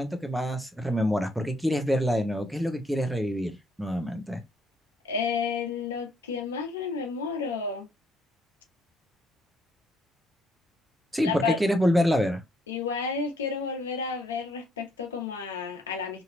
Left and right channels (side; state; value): both; normal; correlation 0.69